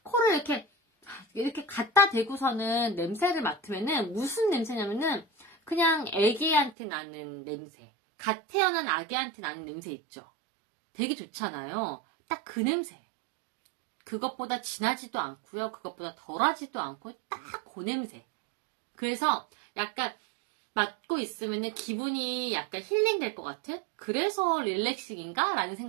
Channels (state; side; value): drops out; left; at 6.8 s